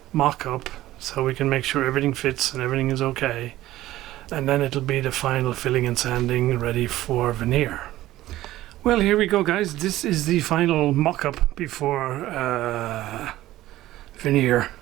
mock-up so we can make sure everything fits and everything is okay. And then it'll be the final filling and sanding ready for veneer. Well, here we go, guys. This is the final mock-up before veneer.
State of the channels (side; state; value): left; quieter; 15.4 dB